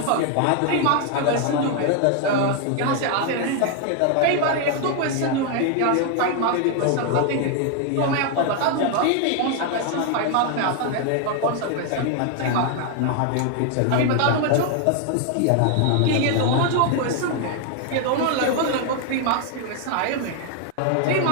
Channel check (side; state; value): both; different; correlation 0.00